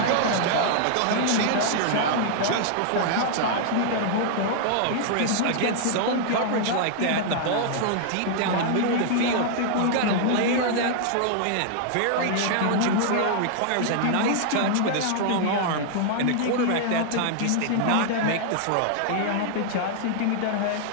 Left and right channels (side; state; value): both; different; correlation -0.01